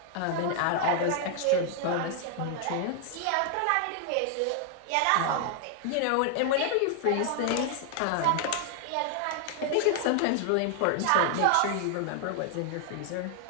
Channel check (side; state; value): both; different; correlation 0.00